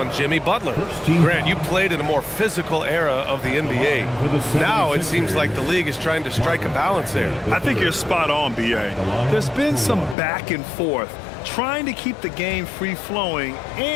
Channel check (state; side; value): drops out; right; at 10.2 s